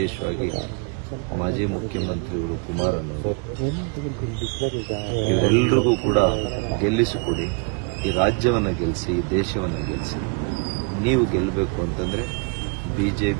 ಮಾಜಿ ಮುಖ್ಯಮಂತ್ರಿಗಳು ಕುಮಾರಣ್ಣವರು, ಇವರೆಲ್ಲರಿಗೂ ಕೂಡ ಗೆಲ್ಲಿಸಿಕೊಡಿ. ಈ ರಾಜ್ಯವನ್ನು ಗೆಲ್ಲಿಸಿ, ಈ ದೇಶವನ್ನು ಗೆಲ್ಲಿಸಿ. ನೀವು ಗೆಲ್ಲಬೇಕು ಅಂತಂದ್ರೆ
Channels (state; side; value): quieter; left; 34.8 dB